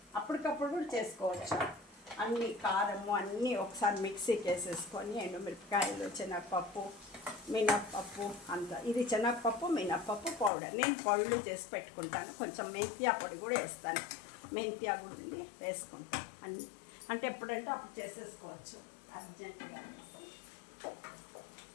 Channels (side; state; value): right; drops out; at 10.5 s